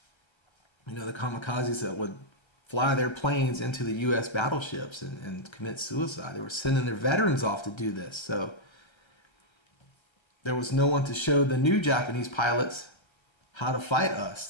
You know, the kamikazes that would fly their planes into the U.S. battleships and commit suicide. They were sending their veterans off to do this. So there was no one to show the new Japanese pilots how to fight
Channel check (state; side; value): late; right; 1.3 ms